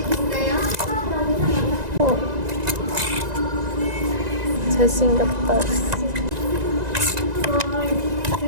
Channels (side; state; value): left; late; 1.9 ms